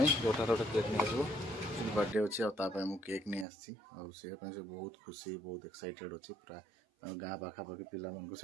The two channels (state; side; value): drops out; left; at 3.5 s